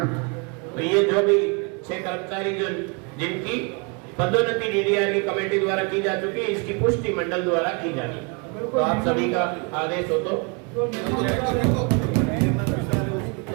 तो ये जो भी 6 कर्मचारी जो जिनकी पदोन्नति डीडीआर की कमेटी द्वारा की जा चुकी है, इसकी पुष्टि मंडल द्वारा की जानी। तो आप सभी का आदेश हो तो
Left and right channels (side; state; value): left; quieter; 32.8 dB